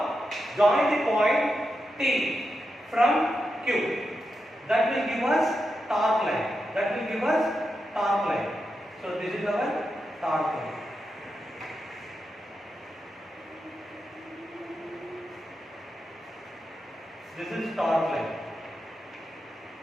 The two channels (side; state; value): both; normal; correlation 0.88